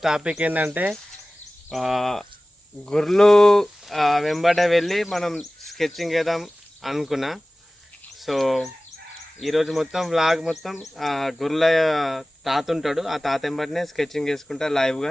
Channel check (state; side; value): normal; both; correlation 0.98